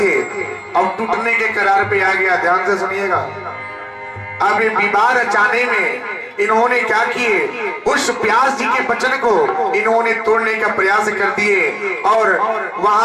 अब टूटने के करार पे आ गया। ध्यान से सुनिएगा। अब ये विवाह रचाने में इन्होंने क्या किए, उस व्यास जी के वचन को इन्होंने तोड़ने का प्रयास कर दिए और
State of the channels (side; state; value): both; identical; correlation 1.00